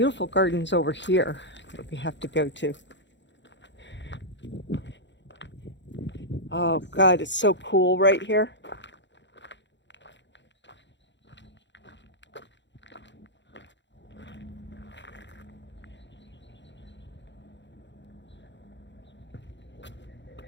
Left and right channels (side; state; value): right; late; 0.52 ms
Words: gardens over here that we have to go to. Oh God, it's so cool right here.